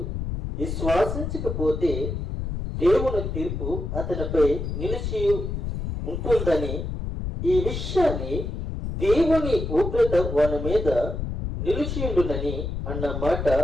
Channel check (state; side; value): noise; left; rumble, 4 dB below the sound